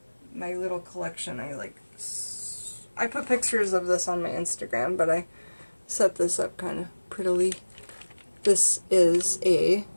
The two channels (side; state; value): both; inverted; correlation -1.00